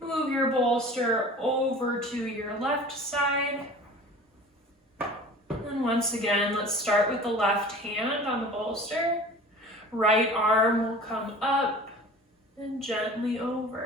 Move your bolster over to your left side. And once again, let's start with the left hand on the bolster. Right arm will come up and gently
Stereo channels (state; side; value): normal; both; correlation 0.42